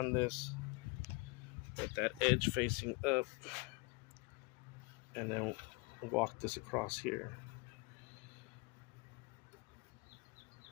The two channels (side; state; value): right; quieter; 28.8 dB